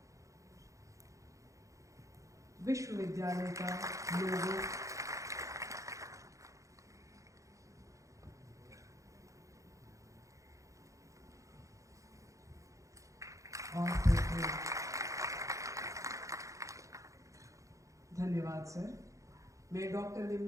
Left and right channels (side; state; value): left; late; 0.15 ms